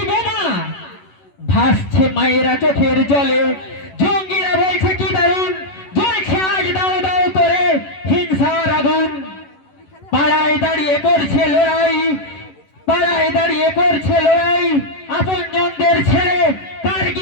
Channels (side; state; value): right; late; 11 ms